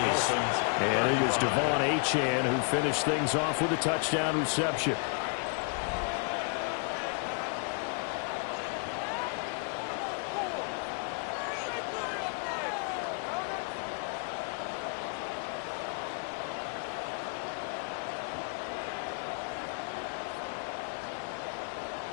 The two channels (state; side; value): quieter; right; 39.5 dB